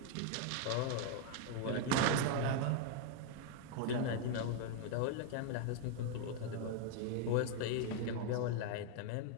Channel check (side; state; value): both; different; correlation 0.00